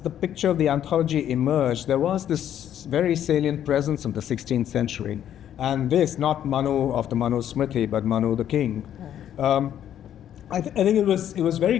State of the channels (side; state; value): right; quieter; 10.5 dB